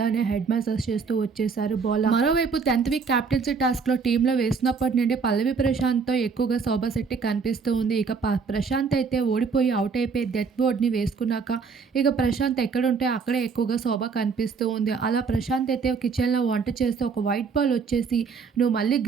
హెడ్ మసాజ్ చేస్తూ వచ్చేశారు బోల. మరోవైపు 10th వీక్ క్యాప్టెన్సీ టాస్క్‌లో టీమ్‌లో వేసినప్పటి నుండి పల్లవి ప్రశాంత్‌తో ఎక్కువగా శోభా శెట్టి కనిపిస్తూ ఉంది. ఇక ప్రశాంత్ అయితే ఓడిపోయి అవుట్ అయిపోయి డెత్ బోర్డ్‌ని వేసుకున్నాక ఇక ప్రశాంత్ ఎక్కడుంటే అక్కడే ఎక్కువగా శోభ కనిపిస్తూ ఉంది. అలా ప్రశాంత్ అయితే కిచెన్‌లో వంట చేస్తూ ఒక వైట్ బాల్ వచ్చేసి, "నువ్వు మళ్ళీ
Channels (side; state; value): left; quieter; 5.3 dB